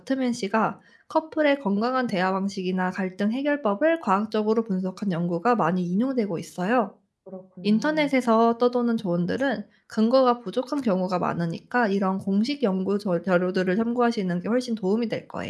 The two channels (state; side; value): identical; both; correlation 1.00